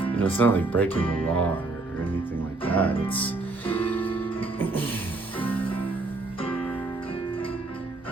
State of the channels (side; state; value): left; quieter; 3.4 dB